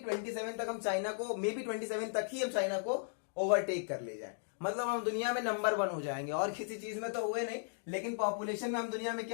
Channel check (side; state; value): right; silent; digital silence